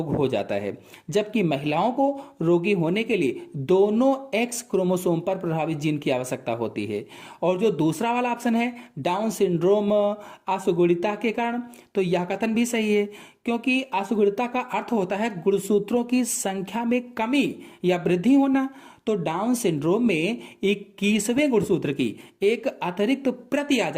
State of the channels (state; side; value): identical; both; correlation 1.00